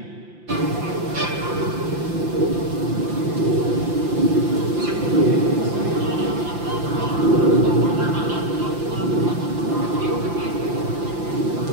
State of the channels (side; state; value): left; late; 5.8 ms